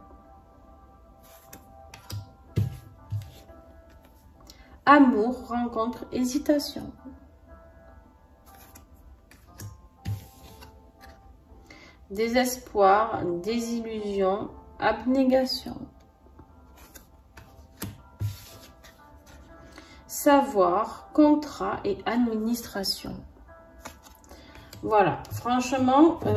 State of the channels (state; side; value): identical; both; correlation 1.00